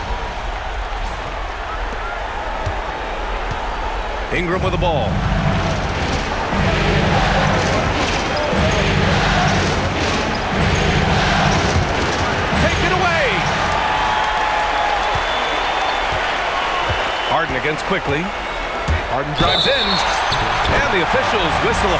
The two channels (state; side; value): identical; both; correlation 1.00